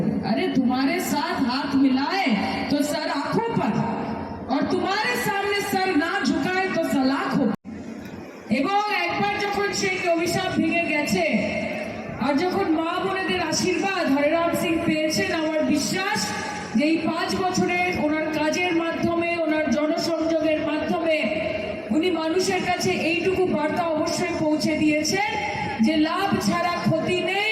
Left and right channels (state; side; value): identical; both; correlation 1.00